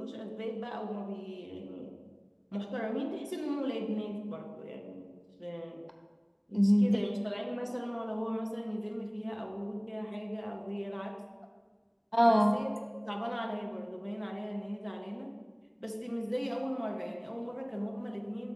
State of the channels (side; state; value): both; identical; correlation 1.00